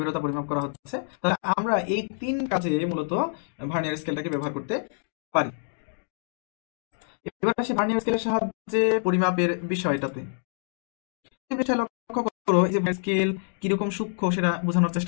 পরিমাপ করা হচ্ছে। তাহলে আমরা এই তিন কাজে মূলত ভার্নিয়ার স্কেলটাকে ব্যবহার করতে পারি। এবার আসি ভার্নিয়ার স্কেলের সাহায্যে পরিমাপের বিষয়টাতে। এই বিষয়ে লক্ষ্য করো যে স্কেল কিরকম সূক্ষ্ম সেটা বোঝানোর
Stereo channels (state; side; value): silent; right; digital silence